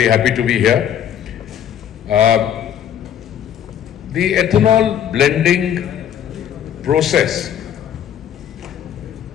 happy to be here. The ethanol blending process,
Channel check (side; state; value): right; quieter; 9.7 dB